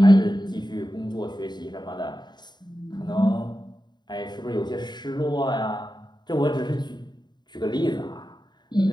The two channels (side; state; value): right; late; 0.21 ms